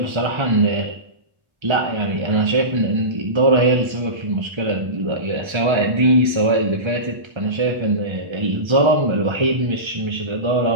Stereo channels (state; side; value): late; left; 1.3 ms